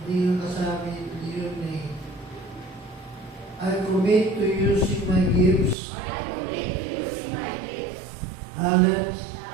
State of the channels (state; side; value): drops out; left; at 5.8 s